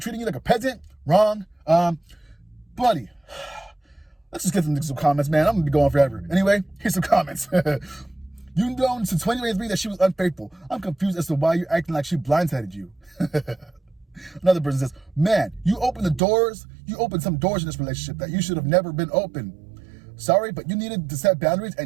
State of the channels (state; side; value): drops out; left; at 16.2 s